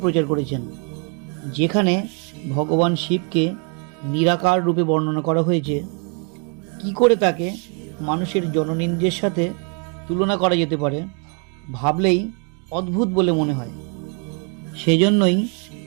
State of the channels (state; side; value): quieter; left; 38.3 dB